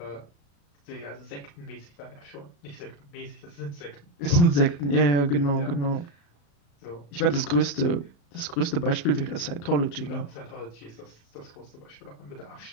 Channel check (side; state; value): right; late; 35 ms